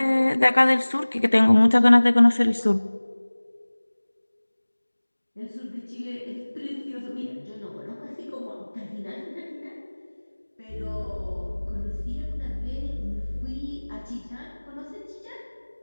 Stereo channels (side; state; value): both; inverted; correlation -1.00